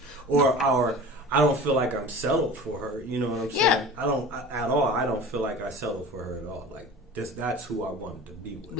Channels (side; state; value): both; normal; correlation 0.38